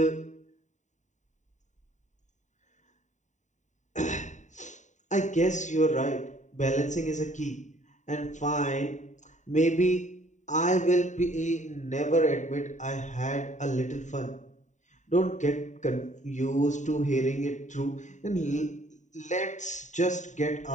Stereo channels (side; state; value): right; late; 0.35 ms